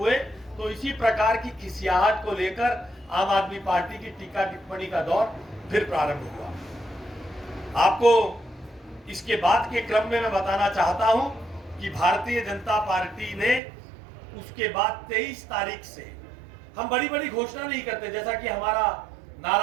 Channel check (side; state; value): left; drops out; at 13.6 s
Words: तो इसी प्रकार की खिसियाहट को लेकर आम आदमी पार्टी की टीका टिप्पणी का दौर फिर प्रारंभ हुआ। आपको इसके बाद के क्रम में मैं बताना चाहता हूं कि भारतीय जनता पार्टी ने उसके बाद 23 तारीख से, हम बड़ी बड़ी घोषणा नहीं करते, जैसा कि हमारा